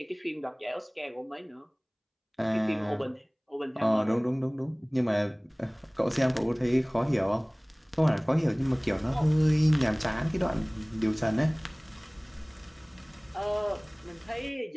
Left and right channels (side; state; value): both; identical; correlation 1.00